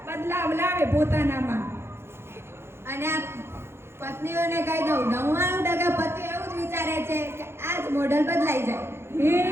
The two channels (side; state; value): left; late; 0.12 ms